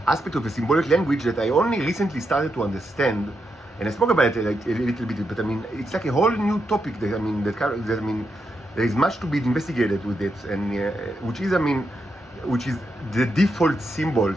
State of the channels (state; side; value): normal; both; correlation 0.83